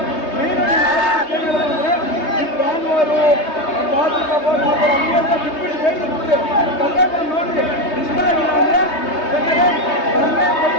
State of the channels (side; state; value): right; late; 3.2 ms